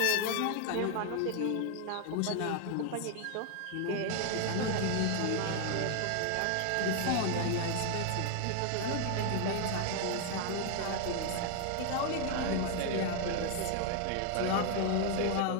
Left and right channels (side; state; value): both; different; correlation 0.00